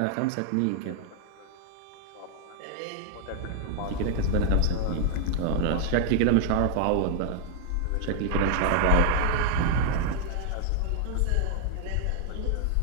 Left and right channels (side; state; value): both; different; correlation 0.00